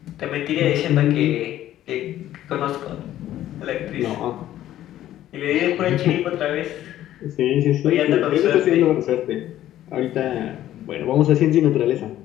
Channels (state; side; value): quieter; right; 12.9 dB